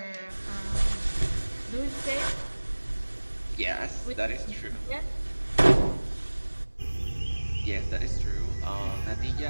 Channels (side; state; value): both; inverted; correlation -1.00